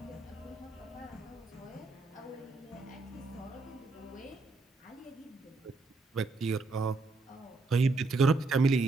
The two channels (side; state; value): left; quieter; 3.5 dB